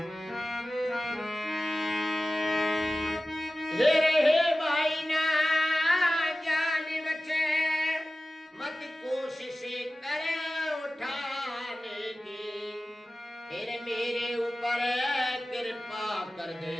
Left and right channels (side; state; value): both; normal; correlation 0.96